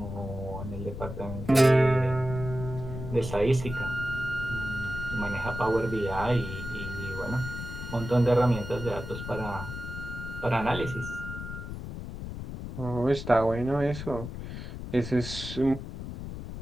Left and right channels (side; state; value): left; noise; rumble, 8 dB below the sound